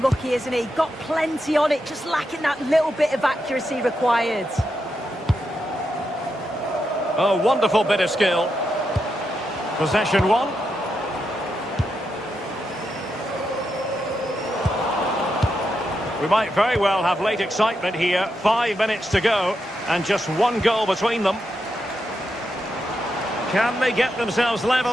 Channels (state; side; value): normal; both; correlation 0.85